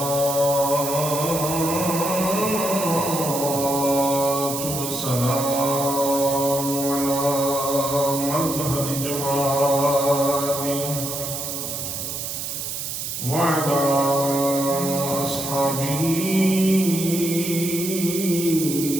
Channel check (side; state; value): right; noise; hiss, 5 dB below the sound